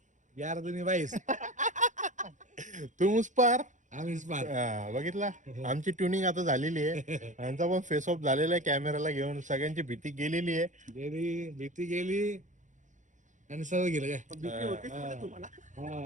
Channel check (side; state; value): left; late; 0.36 ms